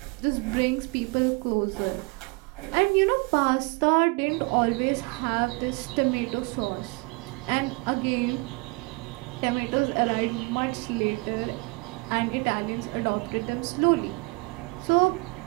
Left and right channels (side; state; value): left; quieter; 28.1 dB